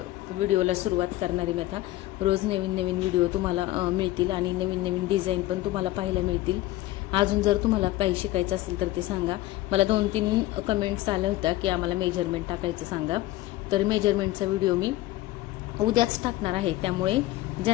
व्हिडिओला सुरुवात करणार आहे मी. आता रोज नवीन नवीन व्हिडिओ तुम्हाला मिळतील आणि नवीन नवीन डिझाईन पण तुम्हाला पाहायला मिळतील. अजून जर तुम्हाला काही शिकायचं असेल तर ते सांगा. मला 2-3 कमेंट्स आल्या होत्या की आम्हाला मेजरमेंट टाकायचं सांगा, तर मेजरमेंटचा व्हिडिओ मी उद्याच टाकणार आहे. त्यामुळे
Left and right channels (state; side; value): quieter; right; 16.4 dB